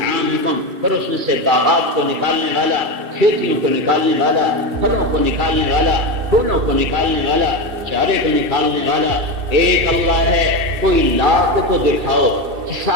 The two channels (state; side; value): late; left; 2.6 ms